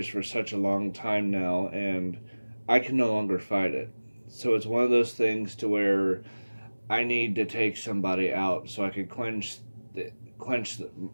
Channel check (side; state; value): both; inverted; correlation -1.00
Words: for such a long time now, and I can no longer fight it. So it's one of those things to where I need to take somebody out so I can quench